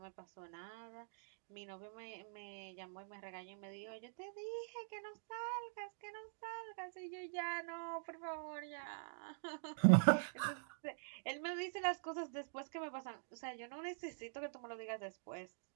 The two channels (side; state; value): left; silent; digital silence